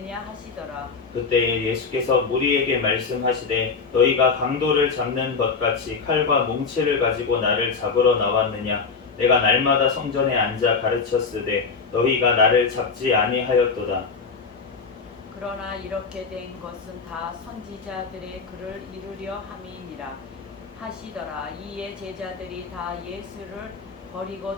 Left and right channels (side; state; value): right; quieter; 5.0 dB